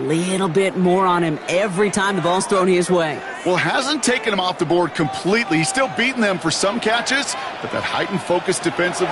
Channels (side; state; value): both; identical; correlation 1.00